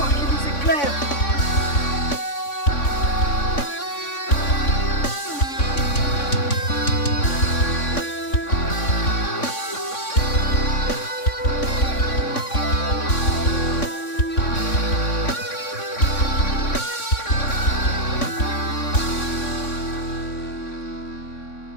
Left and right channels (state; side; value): late; right; 3.6 ms